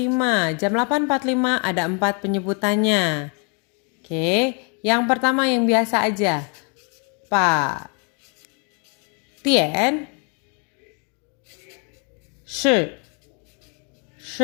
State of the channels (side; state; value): right; quieter; 36.7 dB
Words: Jam 8.45 ada 4 penyebutannya. Oke, yang pertama yang biasa aja. Pak Tian Shi